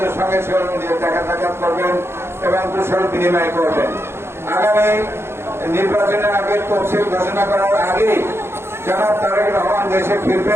সঙ্গে দেখা সাক্ষাৎ করবেন এবং কুশল বিনিময় করবেন। আগামী নির্বাচনের আগে তফসিল ঘোষণা করার আগেই জনাব তারেক রহমান দেশে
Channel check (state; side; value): late; left; 0.12 ms